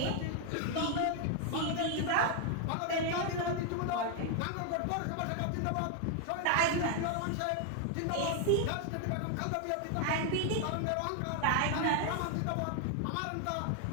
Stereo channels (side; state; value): both; different; correlation 0.00